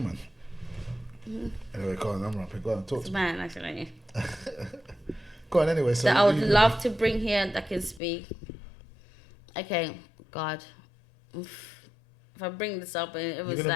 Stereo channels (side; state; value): right; drops out; at 8.0 s